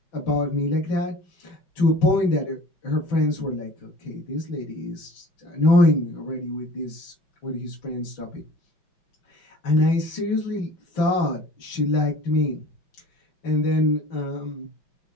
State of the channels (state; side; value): late; right; 5.9 ms